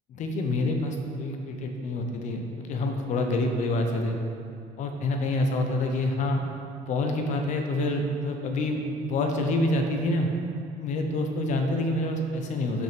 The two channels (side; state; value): both; normal; correlation 0.54